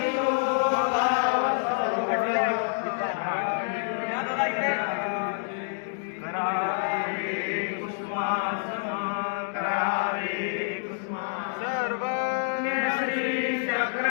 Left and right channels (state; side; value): silent; right; digital silence